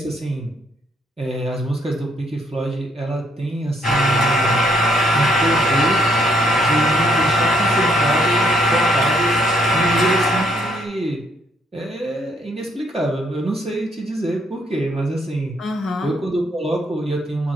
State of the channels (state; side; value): normal; both; correlation 0.70